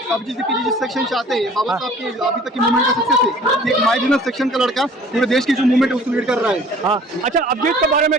जिस सेक्शन से आते हैं बाबा साहब की अभी तक की मूवमेंट का सक्सेस है कि एक मार्जिनल सेक्शन का लड़का पूरे देश की जो मूवमेंट है उसको लीड कर रहा है। हाँ, अच्छा, अभिजीत के बारे में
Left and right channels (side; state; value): both; normal; correlation 0.50